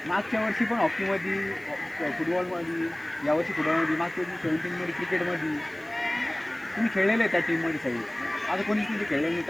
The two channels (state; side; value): noise; right; hiss, 27 dB below the sound